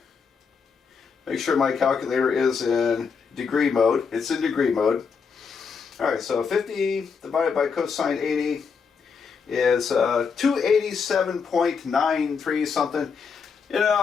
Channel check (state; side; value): quieter; right; 5.7 dB